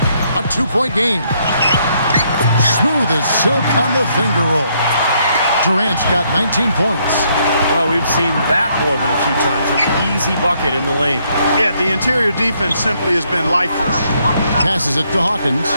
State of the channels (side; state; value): both; inverted; correlation -0.71